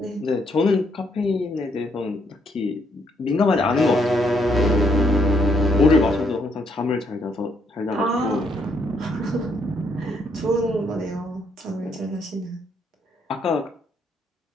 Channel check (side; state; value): both; normal; correlation 0.72